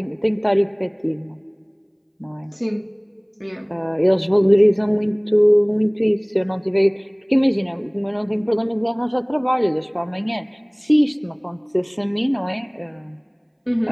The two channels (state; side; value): identical; both; correlation 1.00